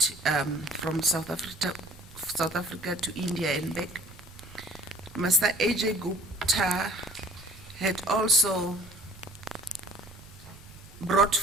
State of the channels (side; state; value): right; noise; rumble, 21 dB below the sound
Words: from South Africa to India and back, Mr. Ajay Gupta had also brought